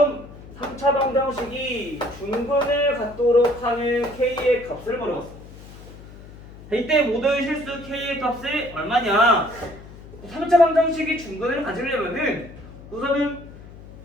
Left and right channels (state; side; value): noise; left; hum, 18 dB below the sound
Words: 3차 방정식이 중근을 갖도록 하는 k의 값을 물어봤어. 이때 모든 실수 k의 값이 얼마냐? 3차 방정식이 중근을 가지려면은 우선은